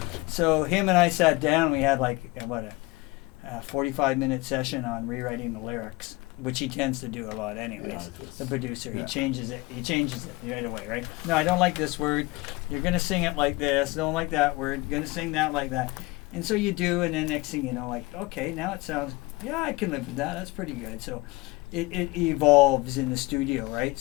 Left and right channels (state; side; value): quieter; right; 23.0 dB